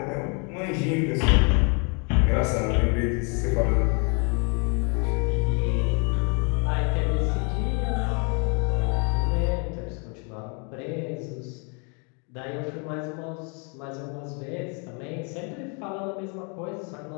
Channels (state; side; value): quieter; right; 35.9 dB